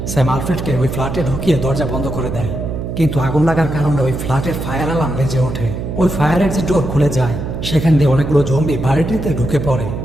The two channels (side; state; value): right; noise; hum, 5 dB below the sound